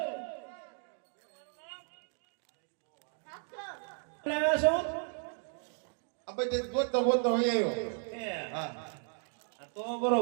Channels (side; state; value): left; silent; 55 dB below the other